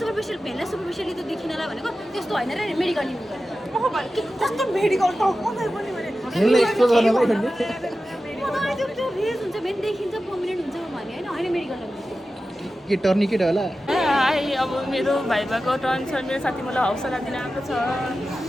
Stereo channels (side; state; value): both; normal; correlation 0.93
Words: सुपरफिसियल भेनलाई सुपरफिसियली त्यो देखिनलाई भनेको त्यस्तो हैन रे मेडिकल युज गरेर ओह भाइ के कस्तो मेडिकल त मलाई पनि भने त्यसलाई एक्सप्लोर गर्नलाई त्यो रिज हुन्छ भेन देखिन्छ पर्मनेन्ट हुन्छ भने हैन मेडिकल के टर्निकेट होला? हाई, अब मेरो भाइबाको टर्न छ। मेरो साथी मलाई हौसला दिन आएको छ।